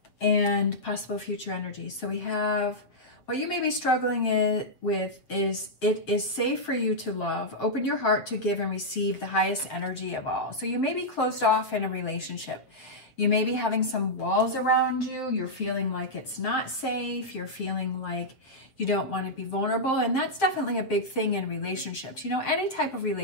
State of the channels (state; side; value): late; right; 7.4 ms